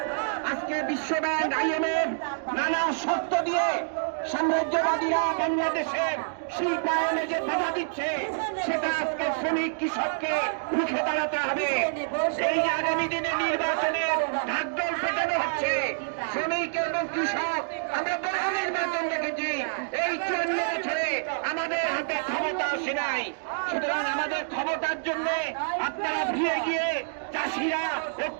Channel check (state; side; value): silent; left; digital silence